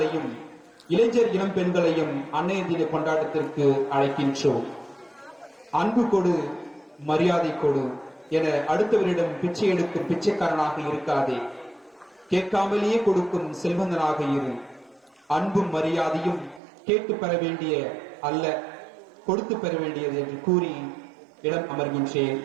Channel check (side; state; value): left; drops out; at 16.6 s